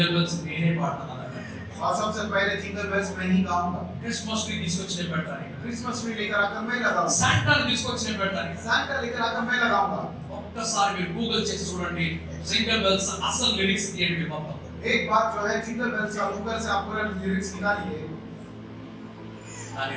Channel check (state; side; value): identical; both; correlation 1.00